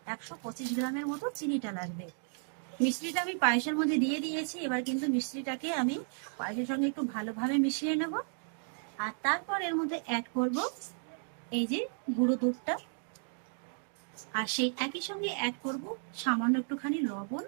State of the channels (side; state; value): left; silent; 55 dB below the other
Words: 125 গ্রামের মতো চিনিটা লাগবে। মিশ্রিটা আমি পায়েসের মধ্যে দিয়ে দিয়েছি, এবার কিন্তু মিশ্রিটাকে আমি পায়েসের সঙ্গে একটু ভালোভাবে মিশিয়ে নেব। আর তারপর এর মধ্যে অ্যাড করব এই যে গুঁড়ো দুধটা, আর সেই একই সঙ্গে অ্যাড করব সামান্য একটুখানি লবণ।